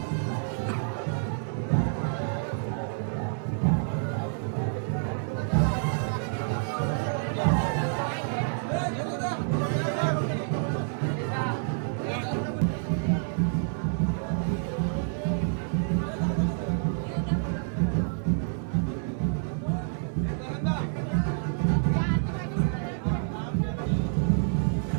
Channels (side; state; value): left; silent; digital silence